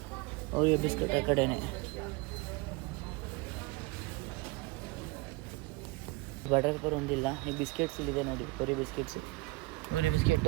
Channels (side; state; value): left; quieter; 23.1 dB